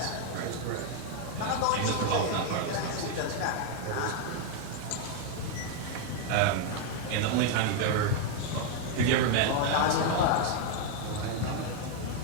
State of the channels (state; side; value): different; both; correlation 0.01